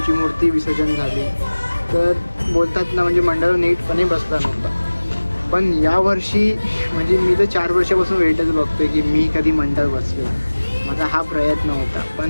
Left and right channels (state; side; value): inverted; both; correlation -1.00